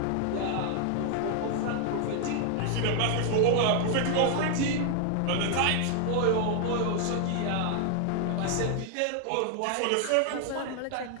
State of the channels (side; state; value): both; different; correlation 0.00